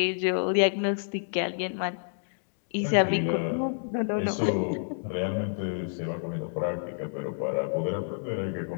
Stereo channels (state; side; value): silent; right; digital silence